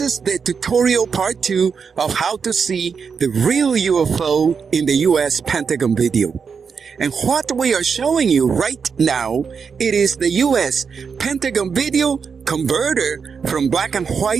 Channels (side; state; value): left; quieter; 6.0 dB